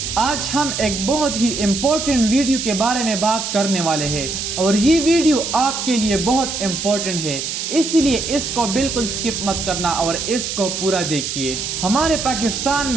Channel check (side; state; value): right; noise; hiss, 4 dB below the sound